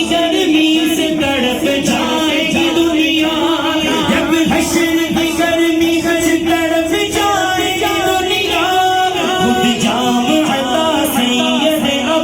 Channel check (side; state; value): both; identical; correlation 1.00